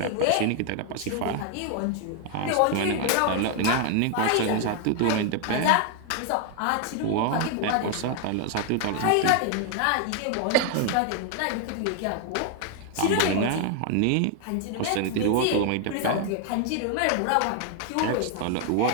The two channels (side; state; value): both; different; correlation 0.00